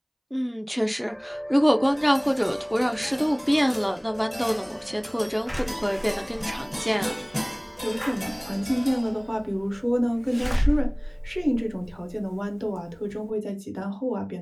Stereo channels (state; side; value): identical; both; correlation 1.00